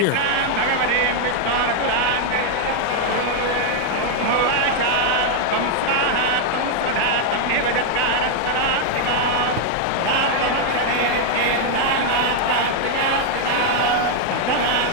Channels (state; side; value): different; both; correlation 0.00